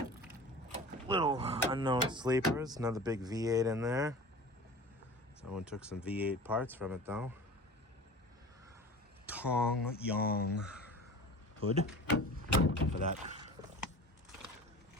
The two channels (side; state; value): both; normal; correlation 0.38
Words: little unknown sleepers. Another big V8 in there. Someone took some V8 parts from it though. Tong Yong hood for that